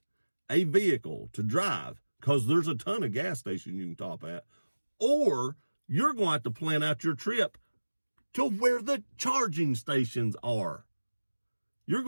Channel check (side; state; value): both; inverted; correlation -1.00